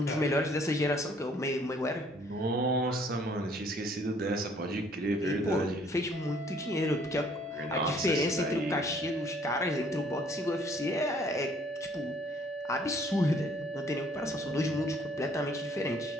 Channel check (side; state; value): both; normal; correlation 0.61